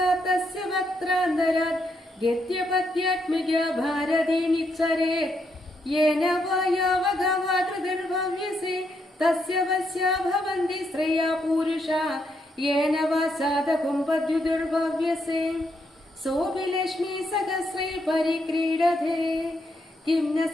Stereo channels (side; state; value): both; normal; correlation 0.78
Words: തസ്യ വക്ത്രാന്തരാത് ഗദ്യപദ്യാത്മിക ഭാരതീ നിച്ഛരേത് യേന വായാവഗവാതൃതിർഭവ്യസേ തസ്യ വസ്യാ ഭവന്തി ശ്രേയാ പൂരുഷാ യേന വാ സാധകുംപദ്യുതിർഭവ്യസേ സോപി ലക്ഷ്മീ സഹസ്രൈ പരിക്രീഡതേ കിം ന